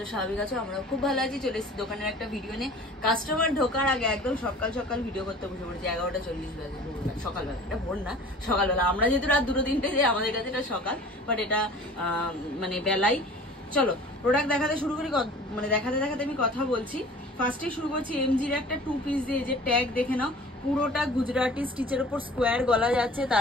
স্বাভাবিক আছো। আমরা খুব ভালো আছি। চলে এসেছি দোকানের একটা ভিডিও নিয়ে। কাস্টমার ঢোকার আগে একদম সকাল সকাল ভিডিও করতে বসে পড়েছি। 11:40 বাজে, সকালবেলা। এটা ভোর না, সকালবেলা। আমরা যেহেতু রাত 2-3টে যাই, আমাদের কাছে এটা সকাল, বাট এটা মানে বেলাই। চলো প্রোডাক্ট দেখাতে শুরু করি। মানে দেখাতে দেখাতে আমি কথা বলছি। ফার্স্টে শুরু করছি এমজির একটা 2 পিস দিয়ে। যে ট্যাগ দেখে নাও, পুরোটা গুজরাটি স্টিচের উপর স্কোয়ার গলা যাচ্ছে,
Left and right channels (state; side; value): normal; both; correlation 0.44